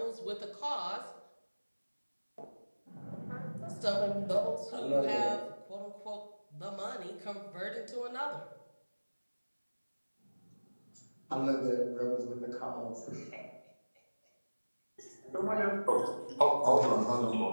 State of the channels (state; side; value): inverted; both; correlation -1.00